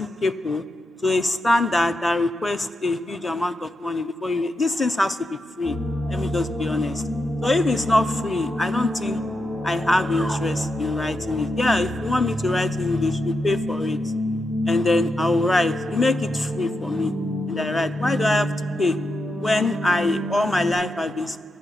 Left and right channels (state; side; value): normal; both; correlation 0.86